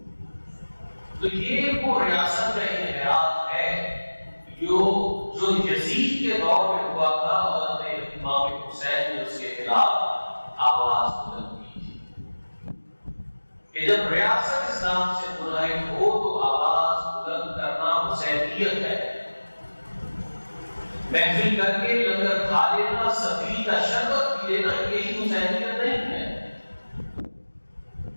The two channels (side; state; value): both; inverted; correlation -1.00